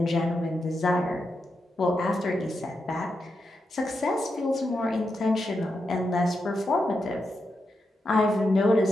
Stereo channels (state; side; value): normal; both; correlation 0.86